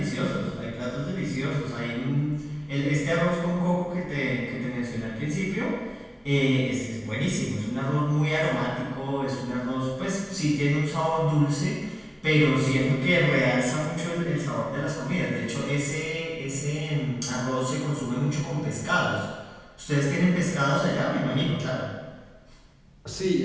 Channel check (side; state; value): both; identical; correlation 1.00